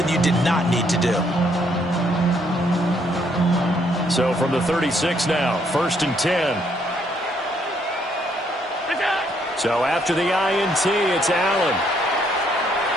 you did not need to do. So from the 36 now, 1st and 10. So after the INT, it's Allen.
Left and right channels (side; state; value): both; normal; correlation 0.70